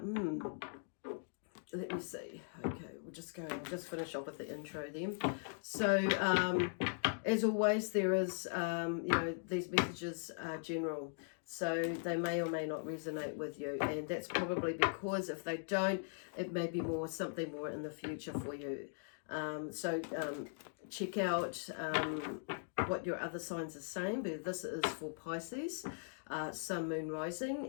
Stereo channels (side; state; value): right; silent; digital silence